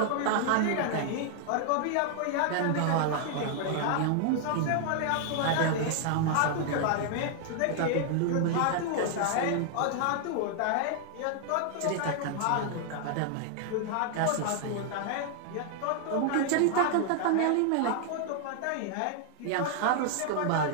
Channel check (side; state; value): both; different; correlation 0.00